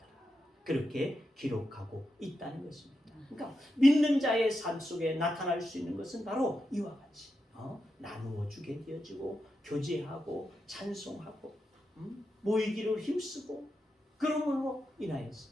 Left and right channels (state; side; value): normal; both; correlation 0.87